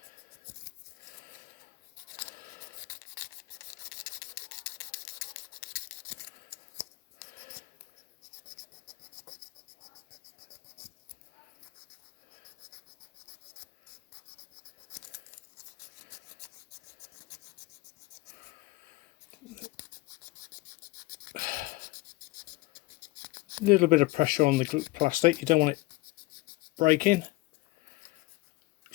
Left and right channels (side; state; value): right; quieter; 21.4 dB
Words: A little bit of pressure on the plastic, you don't want it breaking.